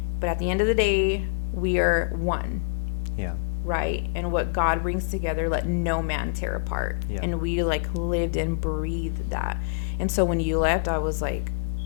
But at the end of the day, we are one, Yeah. right? And what God brings together, let no man tear apart. Yeah. And we like lived and breathed that. And so when you left, I was like,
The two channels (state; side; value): silent; right; digital silence